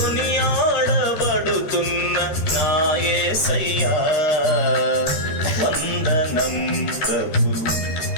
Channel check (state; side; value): late; right; 13 ms